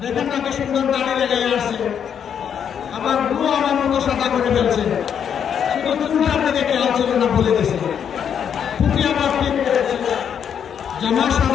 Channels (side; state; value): right; quieter; 8.1 dB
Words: দেখেন না কি সুন্দর দাড়ি লেগে আসছে, আবার ভুয়ো আমার মতো সাদা করে ফেলছে। শুধু চুলটার দিকে খেয়াল ছিল না, বলে গেছে। টুপি আবার ঠিক করেছে, জামা